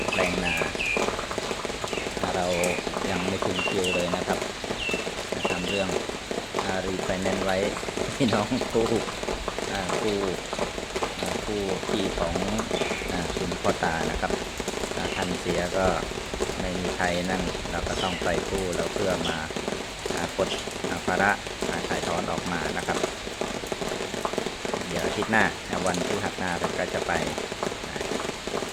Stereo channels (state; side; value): identical; both; correlation 1.00